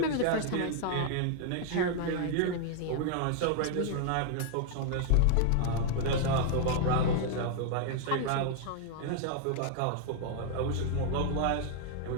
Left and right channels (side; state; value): both; different; correlation 0.00